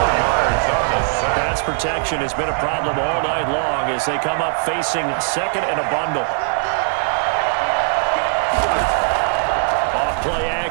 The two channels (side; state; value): left; silent; 64 dB below the other